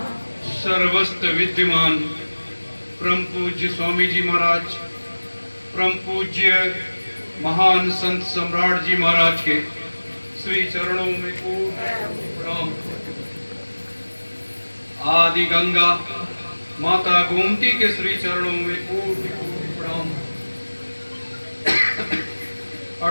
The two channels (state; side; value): inverted; both; correlation -1.00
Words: सर्वस्त्र विद्यमान परम पूज्य स्वामी जी महाराज, परम पूज्य महान संत सम्राट जी महाराज के श्री चरणों में प्रणाम। आदि गंगा माता गोमती के श्री चरणों में प्रणाम।